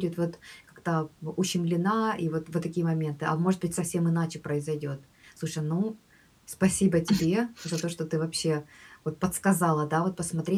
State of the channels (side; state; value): both; identical; correlation 1.00